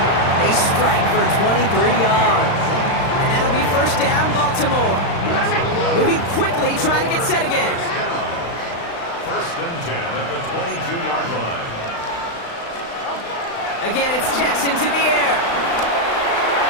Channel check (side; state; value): right; late; 35 ms